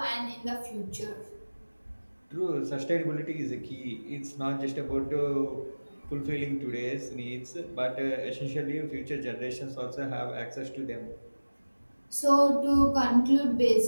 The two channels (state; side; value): inverted; both; correlation -1.00